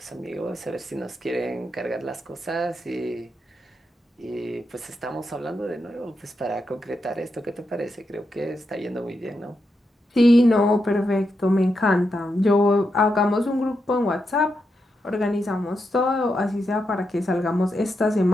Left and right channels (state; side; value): normal; both; correlation 0.85